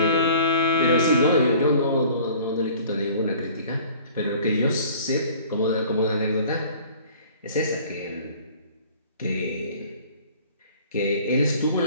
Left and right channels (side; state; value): both; inverted; correlation -0.49